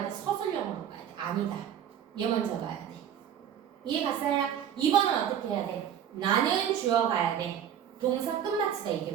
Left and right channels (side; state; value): left; quieter; 9.3 dB